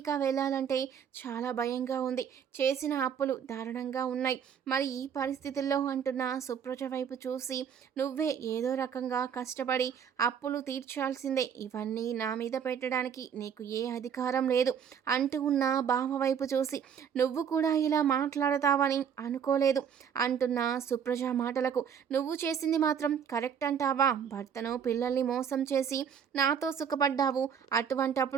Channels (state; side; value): quieter; left; 7.9 dB